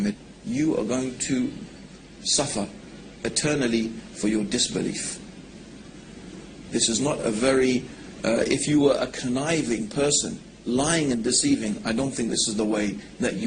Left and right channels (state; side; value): identical; both; correlation 1.00